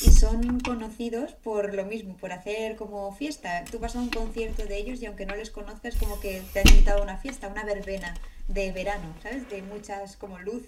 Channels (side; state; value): both; identical; correlation 1.00